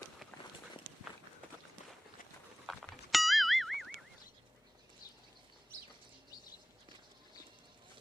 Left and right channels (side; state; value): both; normal; correlation 0.98